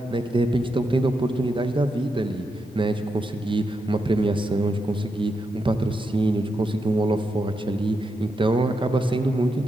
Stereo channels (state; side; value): normal; both; correlation 0.85